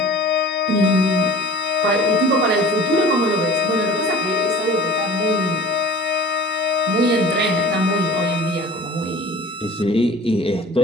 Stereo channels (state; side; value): normal; both; correlation 0.42